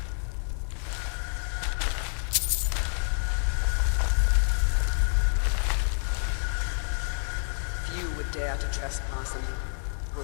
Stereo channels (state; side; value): silent; right; 59 dB below the other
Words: Few would dare to trespass in the